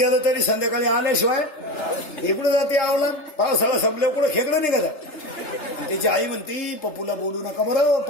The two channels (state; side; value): late; right; 3.3 ms